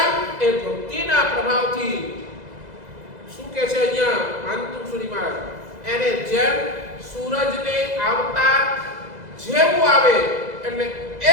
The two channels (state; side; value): late; left; 2.0 ms